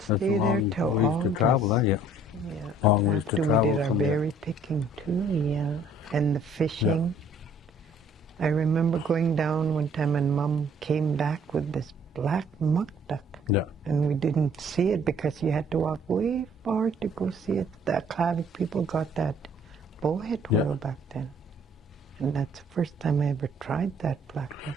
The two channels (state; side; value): normal; both; correlation 0.59